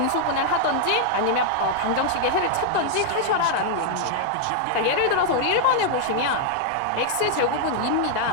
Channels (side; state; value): both; different; correlation -0.01